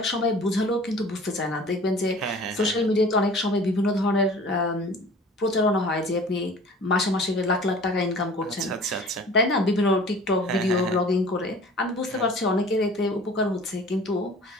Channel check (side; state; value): both; normal; correlation 0.45